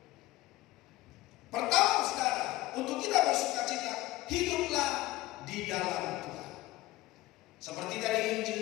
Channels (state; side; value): quieter; right; 18.1 dB